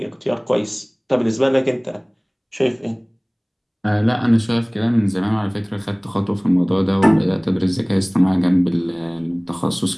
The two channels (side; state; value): both; identical; correlation 1.00